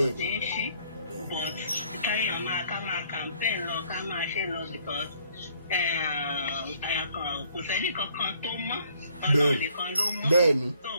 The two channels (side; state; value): both; inverted; correlation -0.63